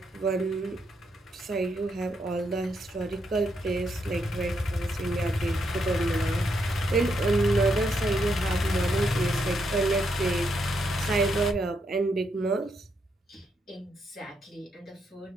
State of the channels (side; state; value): both; normal; correlation 0.78